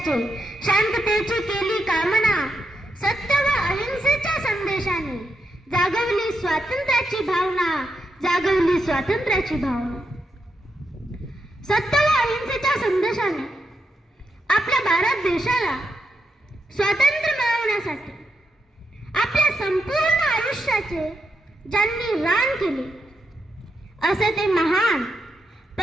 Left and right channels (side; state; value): both; normal; correlation 0.83